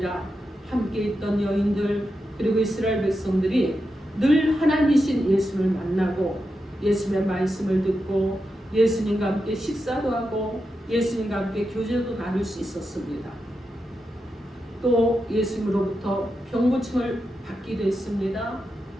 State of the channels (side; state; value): both; normal; correlation 0.88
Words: 함께 있던 여인들 그리고 이스라엘 백성들이 늘 하나님이신 예수님을 만나고 예수님의 말씀을 듣고 예수님과 함께 식사도 하고 예수님과 함께 교제도 나눌 수 있었습니다. 또 예수님으로부터 병고침을 받기도 했습니다.